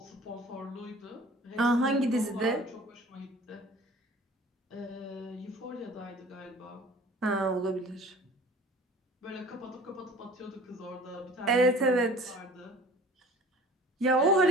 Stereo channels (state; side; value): normal; both; correlation 0.46